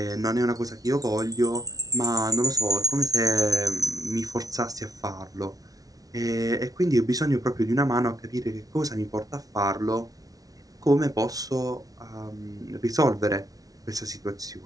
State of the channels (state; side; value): late; left; 0.18 ms